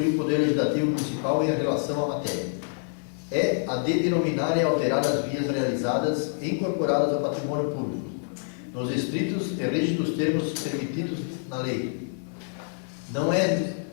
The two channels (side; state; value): right; silent; digital silence